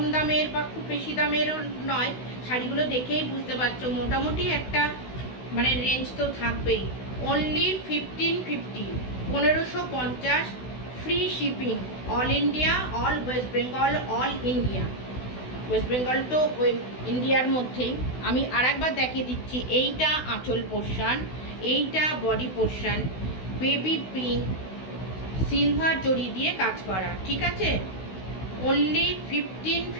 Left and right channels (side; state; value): right; late; 16 ms